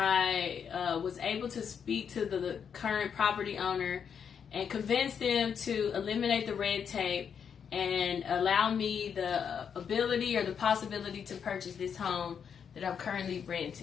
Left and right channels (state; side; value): quieter; right; 7.3 dB